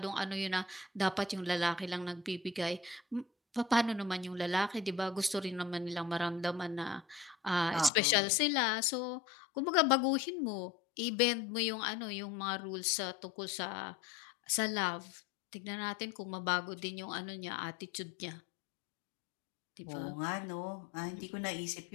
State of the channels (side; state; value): right; drops out; at 7.9 s